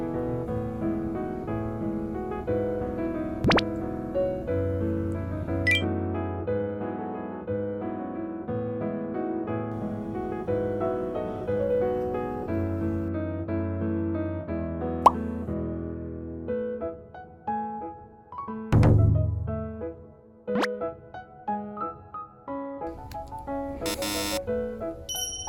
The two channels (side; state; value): both; identical; correlation 1.00